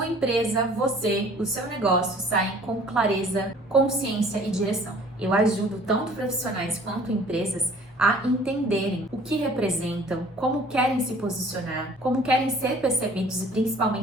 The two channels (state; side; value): normal; both; correlation 0.52